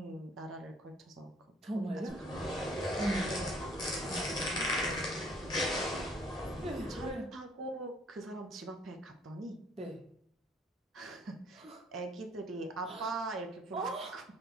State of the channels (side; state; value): both; normal; correlation 0.60